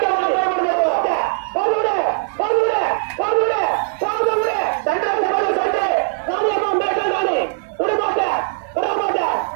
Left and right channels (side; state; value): left; silent; digital silence